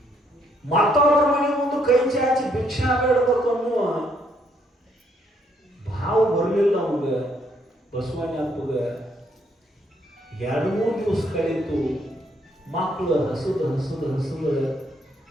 ಮತ್ತೊಬ್ಬರ ಮನೆ ಮುಂದೆ ಕೈ ಚಾಚಿ ಭಿಕ್ಷಾ ಬೇಡಬೇಕು ಅನ್ನುವ ಭಾವ ಬರಲಿಲ್ಲ ಅವಾಗ. ಬಸವಣ್ಣಪ್ಪಗ 2-3 ದಿವಸ ಕಳೀತು. ಮಕ್ಕಳು ಹಸದ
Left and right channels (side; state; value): both; normal; correlation 0.71